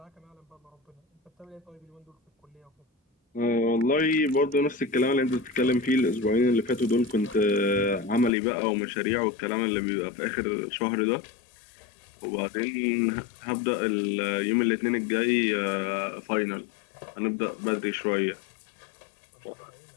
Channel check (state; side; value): drops out; right; at 8.3 s